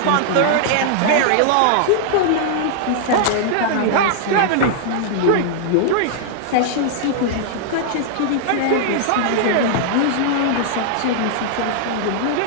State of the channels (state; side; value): different; both; correlation -0.01